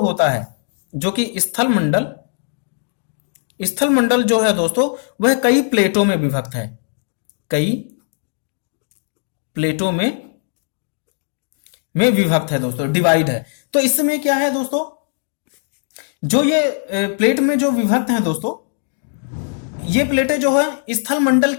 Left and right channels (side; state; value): right; silent; digital silence